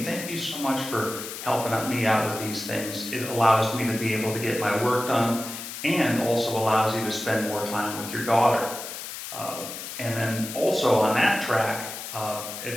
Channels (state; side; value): noise; left; hiss, 9 dB below the sound